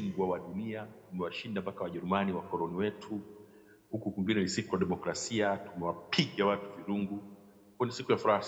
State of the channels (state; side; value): identical; both; correlation 1.00